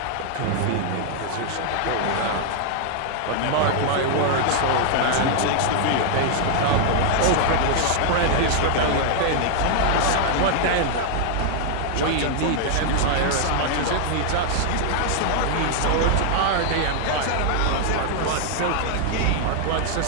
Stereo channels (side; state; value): both; different; correlation 0.00